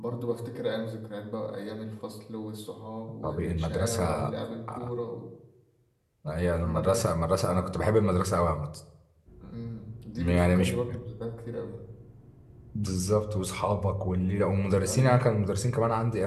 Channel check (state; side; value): identical; both; correlation 1.00